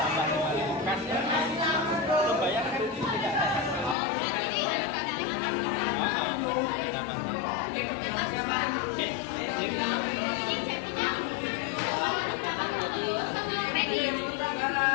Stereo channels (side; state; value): right; drops out; at 4.0 s